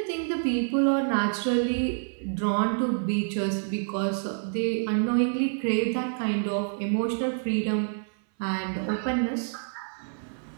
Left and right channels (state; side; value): silent; left; 60 dB below the other